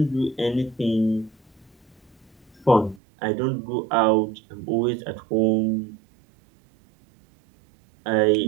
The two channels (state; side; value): drops out; left; at 3.0 s